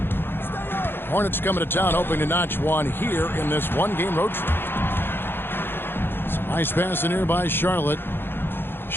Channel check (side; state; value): right; late; 0.10 ms